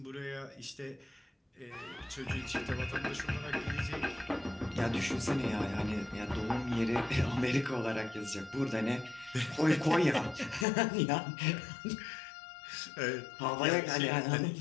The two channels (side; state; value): right; drops out; at 10.7 s